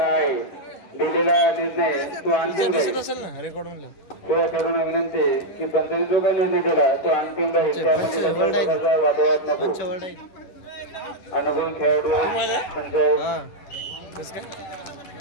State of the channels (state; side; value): late; right; 10 ms